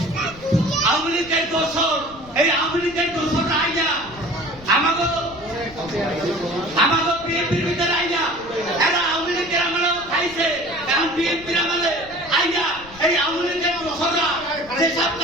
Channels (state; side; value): noise; left; rumble, 20 dB below the sound